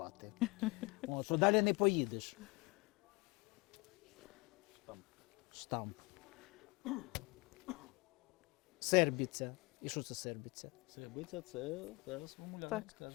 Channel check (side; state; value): right; quieter; 25.8 dB